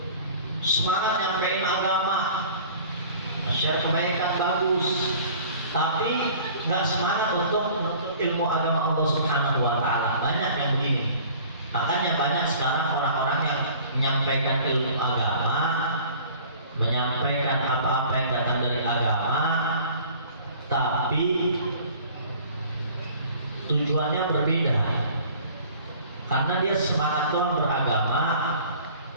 Semangat nyampein agama, share kebaikan bagus, tapi nggak semangat untuk menuntut ilmu agama Allah Subhanahu wa taala. Banyak yang begini. Makanya banyak sekarang orang-orang yang menyampaikan ilmu agama, menyampaikan apa-apa yang datang dari agama, tapi tujuannya berbeda. Karena dia semangat doang beragama,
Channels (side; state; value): both; inverted; correlation -0.48